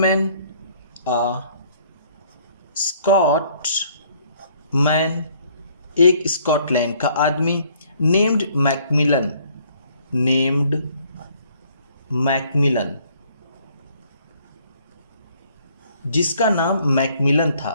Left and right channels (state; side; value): inverted; both; correlation -0.62